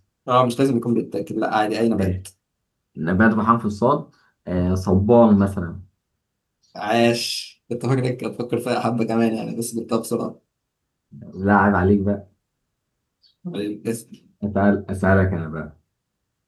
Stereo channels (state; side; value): identical; both; correlation 1.00